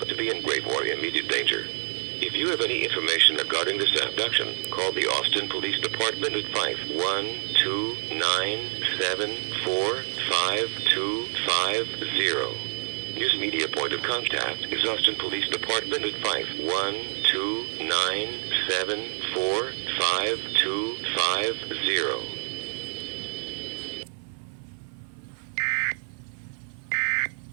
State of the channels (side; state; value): left; silent; 55 dB below the other